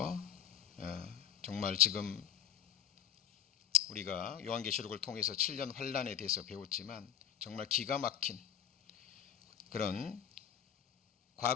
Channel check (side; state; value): right; quieter; 9.3 dB